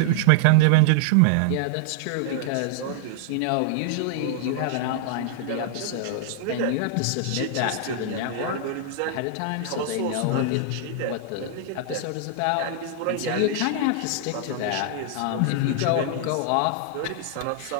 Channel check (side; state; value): both; different; correlation -0.01